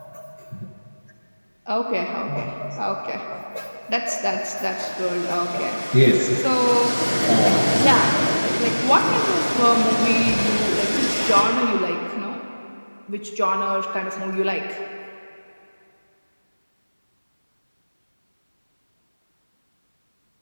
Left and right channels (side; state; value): both; inverted; correlation -1.00